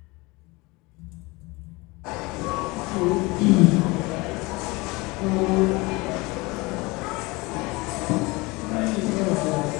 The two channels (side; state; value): right; quieter; 24.0 dB